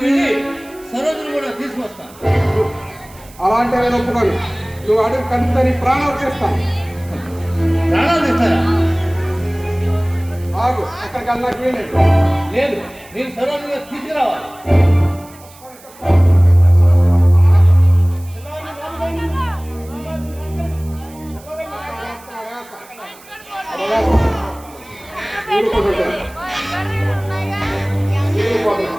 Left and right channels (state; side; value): noise; right; hiss, 23 dB below the sound